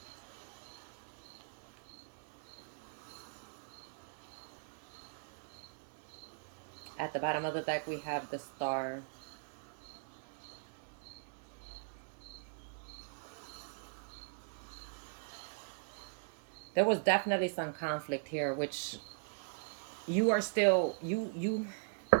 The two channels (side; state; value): left; silent; digital silence